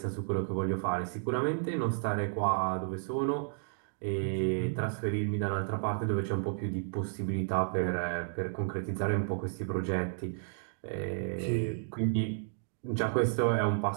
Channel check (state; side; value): silent; left; digital silence